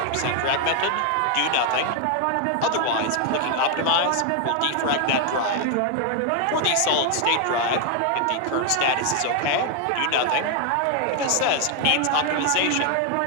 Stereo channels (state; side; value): different; both; correlation 0.00